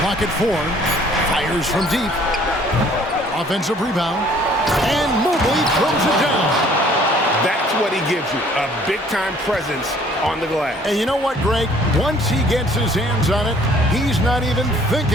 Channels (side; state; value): both; normal; correlation 0.57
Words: at 4. Fires from deep. Offensive rebound. And Mobley throws it down. That's what he gives you, a big-time presence on the glass. And you know what, Greg? Once he gets his hands on it, he's not even